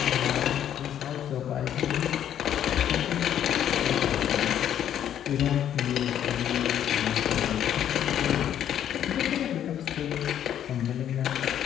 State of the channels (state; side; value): quieter; right; 10.2 dB